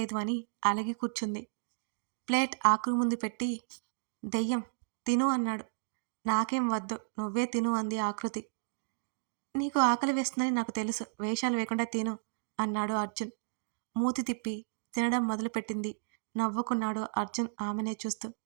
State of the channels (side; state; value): left; silent; digital silence